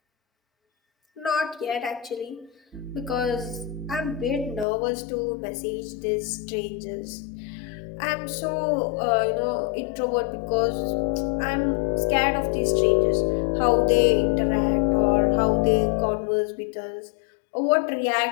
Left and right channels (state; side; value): drops out; right; at 4.7 s